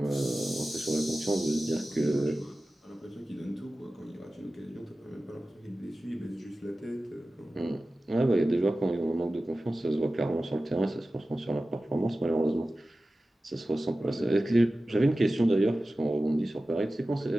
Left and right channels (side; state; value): both; normal; correlation 0.95